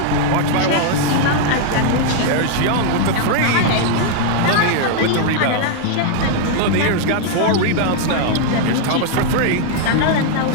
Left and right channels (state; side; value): different; both; correlation 0.00